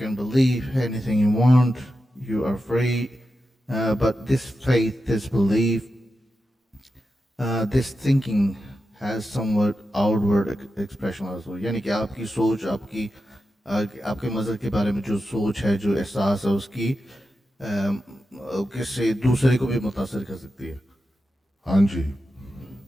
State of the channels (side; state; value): both; normal; correlation 0.90